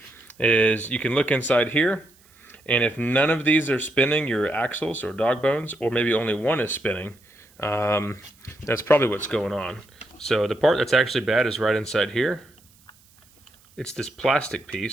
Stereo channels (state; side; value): noise; right; hiss, 30 dB below the sound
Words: is you can look inside here, and if none of these are spinning, your axles or dog bones, or maybe only one is spinning, that's probably what's going on. So the part that's actually bad is right inside here. It's this plastic